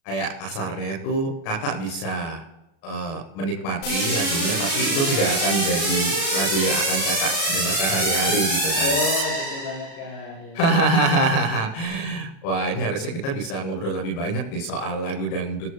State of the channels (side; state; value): right; late; 36 ms